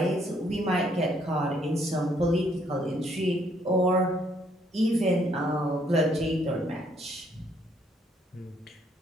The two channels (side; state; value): both; normal; correlation 0.68